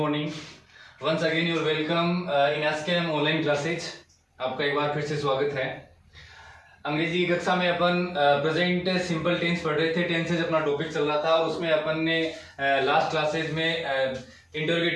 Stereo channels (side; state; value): both; identical; correlation 1.00